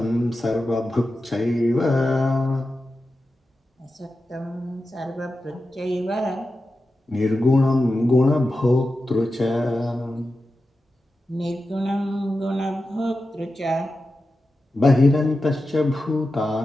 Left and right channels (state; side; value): normal; both; correlation 0.92